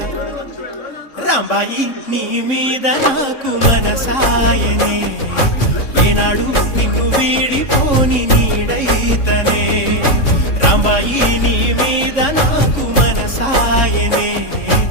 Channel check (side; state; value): right; late; 3.6 ms